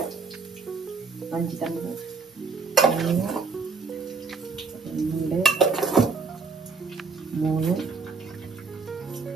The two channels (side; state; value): left; quieter; 4.6 dB